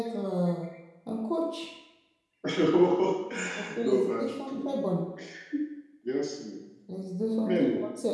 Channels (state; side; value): identical; both; correlation 1.00